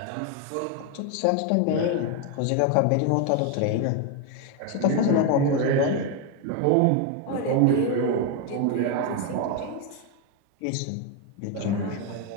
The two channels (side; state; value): both; different; correlation 0.01